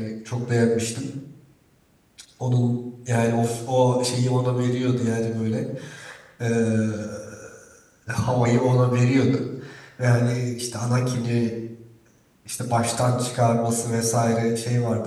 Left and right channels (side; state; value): both; identical; correlation 1.00